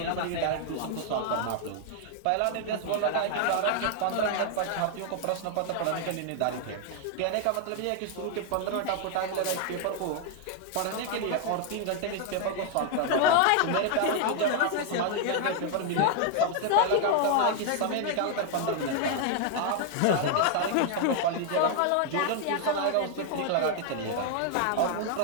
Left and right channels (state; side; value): different; both; correlation 0.00